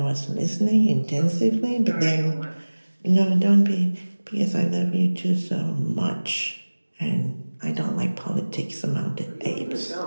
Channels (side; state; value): both; inverted; correlation -1.00